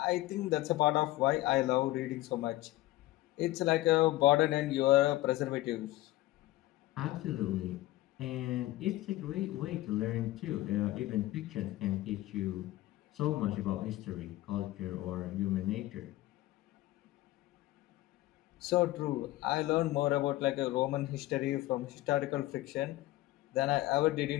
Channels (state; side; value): quieter; right; 17.0 dB